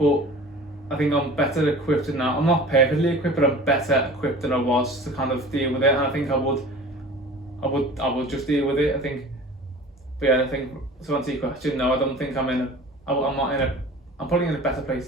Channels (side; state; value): both; normal; correlation 0.41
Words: I think I'm better equipped now. I'm not perfectly equipped, but I'm better equipped than I was to kind of deal with it. And I think I would just deal with it. I think, but yeah, I think to answer your question, no, I don't think I'm not in a. I'm probably in a better place